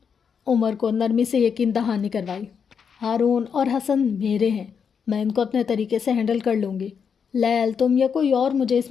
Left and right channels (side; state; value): right; quieter; 6.7 dB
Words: عمر کو نرمی سے یقین دہانی کروائی۔ ہارون اور حسن میرے ہیں، میں ان کو اپنے طریقے سے ہینڈل کر لوں گی۔ لیل، تم یا کوئی اور، مجھے اس